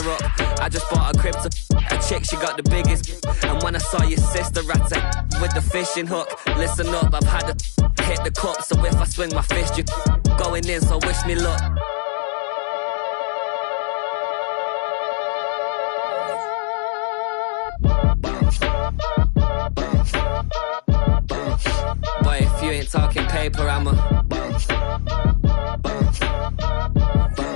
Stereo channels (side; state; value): right; silent; digital silence